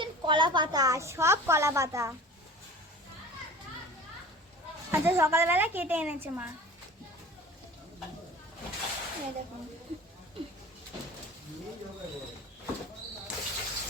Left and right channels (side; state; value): both; normal; correlation 0.40